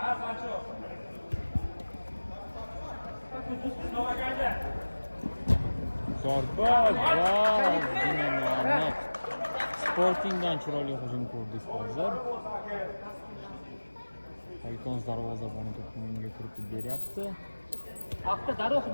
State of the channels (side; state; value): both; inverted; correlation -1.00